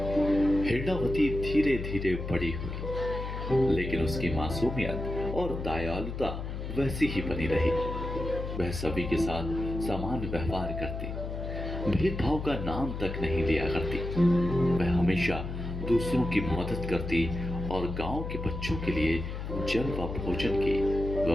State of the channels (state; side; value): noise; left; hum, 6 dB below the sound